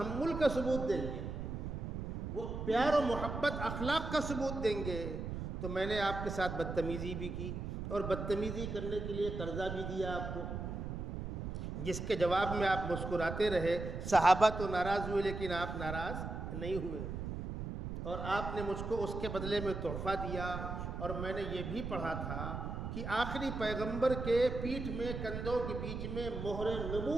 کا ثبوت دیں گے، وہ پیار و محبت اخلاق کا ثبوت دیں گے۔ تو میں نے آپ کے ساتھ بدتمیزی بھی کی اور بدتمیزی کرنے کے لیے قرضہ بھی دیا آپ کو، جس کے جواب میں آپ مسکراتے رہے۔ صحابہ تو ناراض ہوئے لیکن آپ ناراض نہیں ہوئے، اور آپ نے مجھ کو اس کے بدلے میں تحفہ دیا۔ اور میں نے یہ بھی پڑھا تھا کہ آخری پیغمبر کے پیٹھ میں کندھوں کے بیچ میں مہر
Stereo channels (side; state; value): right; noise; rumble, 5 dB below the sound